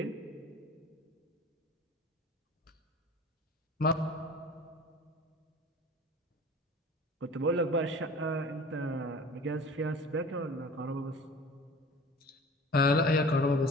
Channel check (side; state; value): both; normal; correlation 0.42